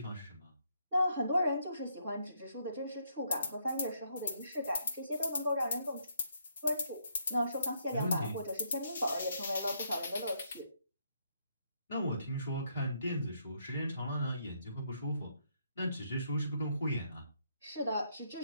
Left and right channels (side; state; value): both; inverted; correlation -0.73